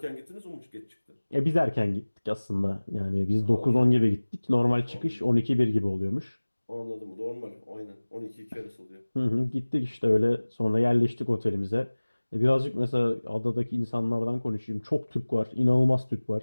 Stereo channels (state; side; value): inverted; both; correlation -1.00